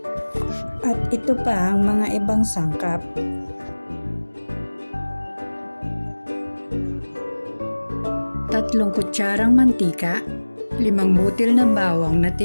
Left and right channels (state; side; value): inverted; both; correlation -1.00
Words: at ito pa ang mga ibang sangkap. Tatlong kutsarang mantika, 5 butil na bawang na